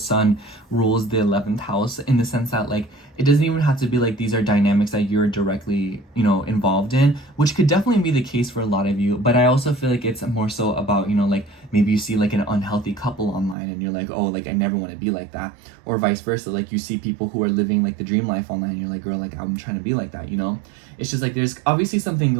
rules the 11th house, in the sense that like it doesn't even have to be like these are dynamics that you're directly, you know, involved in, which could definitely be the case for a lot of you. But I also feel like it's more so about, you know, like maybe you see like an unhealthy couple online and you're like, oh, like I never want to be like that, or vice versa. Like you see people who are living like the dream life online and you're like, girl, like I'm trying to be like that, you know. It's just like there's obviously something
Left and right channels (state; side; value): drops out; left; at 13.6 s